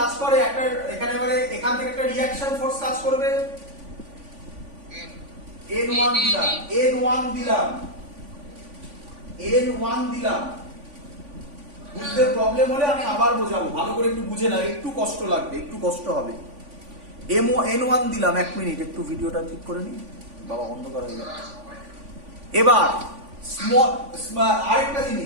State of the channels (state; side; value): late; left; 3.5 ms